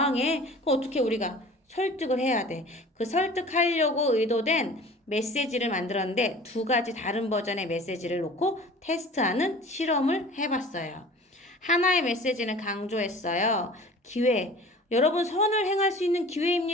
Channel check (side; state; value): both; normal; correlation 0.43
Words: 그럼 어떻게 우리가 설득을 해야 돼. 그 설득하려고 의도된 메시지를 만들었는데 두 가지 다른 버전의 메시지를 놓고 테스트하는 실험을 해봤어요. 하나의 메시지는 강조했어요. 기회. 여러분 선을 행할 수 있는